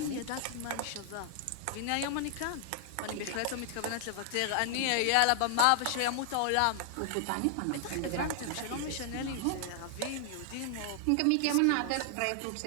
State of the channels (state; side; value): different; both; correlation 0.00